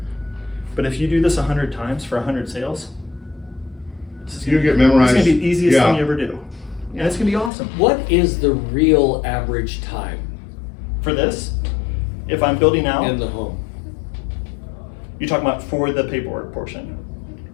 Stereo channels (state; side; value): drops out; right; at 7.5 s